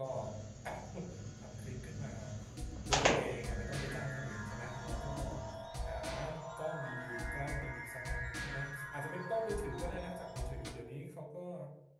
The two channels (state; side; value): identical; both; correlation 1.00